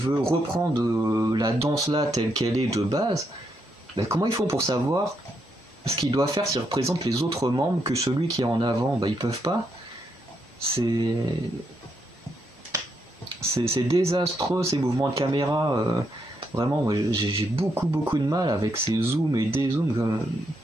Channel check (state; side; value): normal; both; correlation 0.79